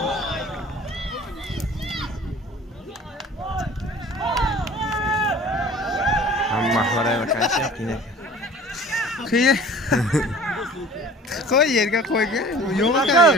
Mahvara vakansiya qiyin. Qiyin. Qo'y yerga qo'yga. Yo'q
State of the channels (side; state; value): both; normal; correlation 0.46